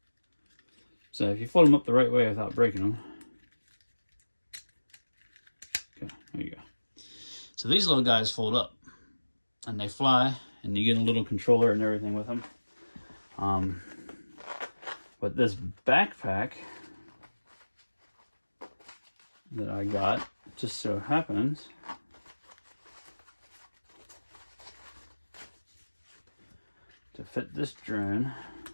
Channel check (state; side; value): inverted; both; correlation -1.00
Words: So if you fold them up the right way without breaking them. Okay, there you go. So these little guys fold up and they fly, and you get a little controller and everything with them. But this backpack that I got just so happens to fit this drone